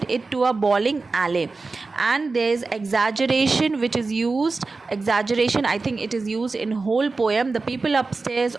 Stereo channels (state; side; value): quieter; left; 3.9 dB